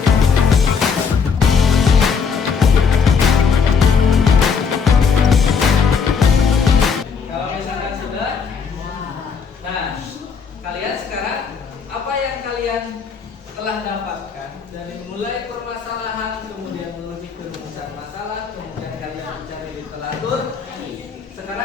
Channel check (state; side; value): quieter; right; 5.8 dB